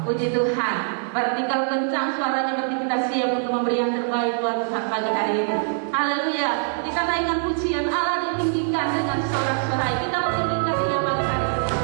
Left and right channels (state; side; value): silent; left; digital silence